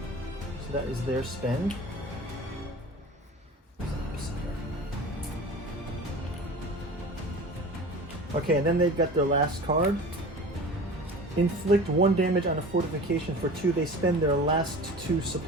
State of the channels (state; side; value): normal; both; correlation 0.37